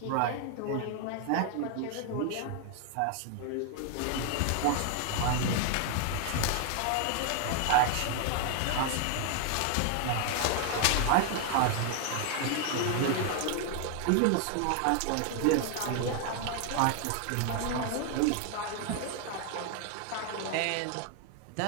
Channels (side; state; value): both; different; correlation 0.00